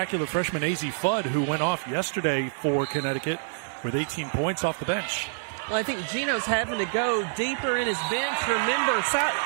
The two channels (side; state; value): left; silent; 60 dB below the other